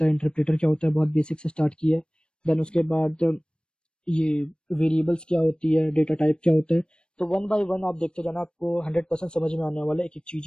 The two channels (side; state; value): right; late; 0.053 ms